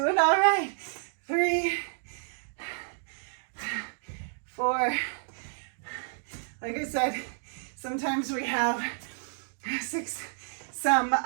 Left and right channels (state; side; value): silent; left; digital silence